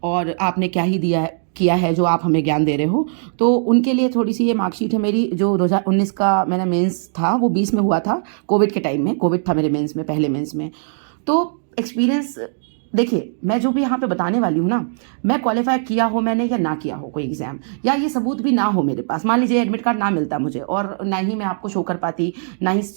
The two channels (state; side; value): silent; left; digital silence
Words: और आपने क्या ही दिया है किया है जो आप हमें ज्ञान दे रहे हो, तो उनके लिए थोड़ी सी ये मार्कशीट है मेरी। जो 2019 का मेरा मेंस था वो 20 में हुआ था, कोविड के टाइम में। कोविड था मेरे मेंस में, पहले मेंस में। तो एक्सपीरियंस देखिए, मैं जो भी यहाँ पे बताने वाली हूँ ना, मैं क्वालिफाई किया हो मैंने या ना किया हो कोई एग्जाम, या ये सबूत भी ना हो मेरे पास, मान लीजिए एडमिट कार्ड ना मिलता मुझे और ना ही मैं आपको शो कर पाती, ना ही